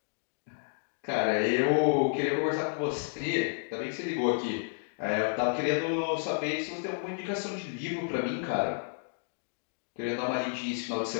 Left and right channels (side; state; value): right; silent; digital silence